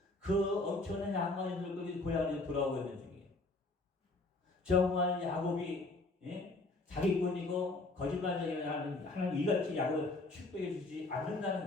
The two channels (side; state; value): right; quieter; 3.1 dB